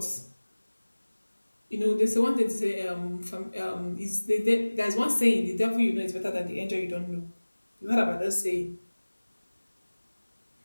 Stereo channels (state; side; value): inverted; both; correlation -1.00